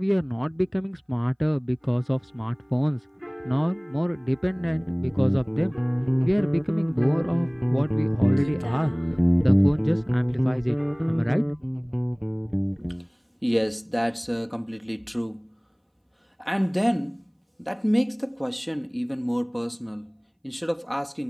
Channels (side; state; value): both; identical; correlation 1.00